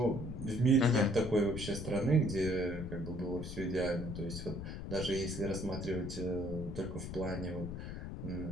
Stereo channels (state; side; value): noise; left; rumble, 7 dB below the sound